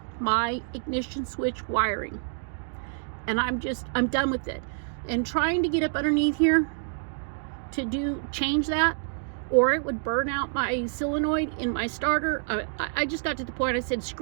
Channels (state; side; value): silent; left; digital silence